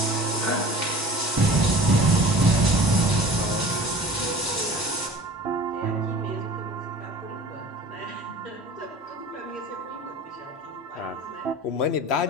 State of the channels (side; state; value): both; normal; correlation 0.43